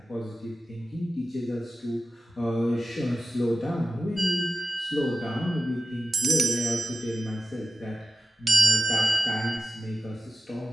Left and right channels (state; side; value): normal; both; correlation 0.93